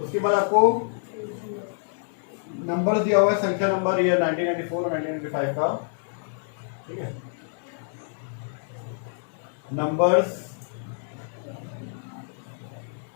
उसके बाद आपको नंबर दिया हुआ है, संख्या नंबर, ये 1994 और 1995 का। ठीक है, नंबर्स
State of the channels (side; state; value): right; silent; digital silence